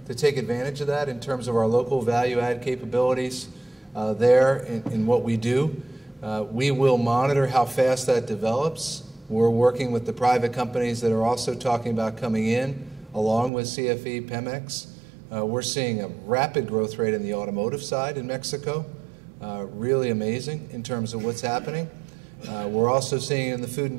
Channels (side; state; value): left; drops out; at 13.5 s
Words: to take advantage of that in terms of our local value-add capabilities there in what we do. We will monitor how fast that develops. We're working with the private companies that are also talking about coming in, along with CFE, Pemex. We're seeing a rapid growth rate in the automotive side in Mexico. Really amazing in terms of what's happening. We're also seeing it in the food